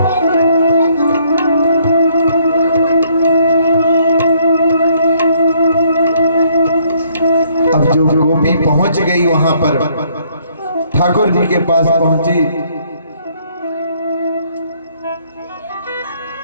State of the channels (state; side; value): inverted; both; correlation -0.66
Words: अब जो गोपी पहुंच गई वहां पर, ठाकुर जी के पास पहुंची